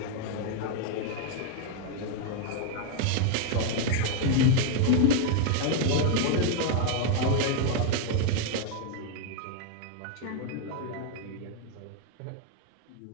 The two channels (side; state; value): both; different; correlation 0.00